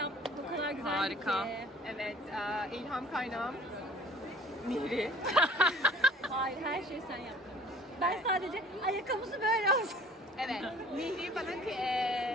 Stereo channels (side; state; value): both; normal; correlation 0.50